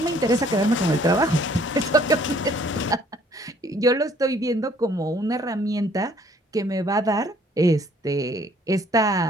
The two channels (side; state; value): both; normal; correlation 0.60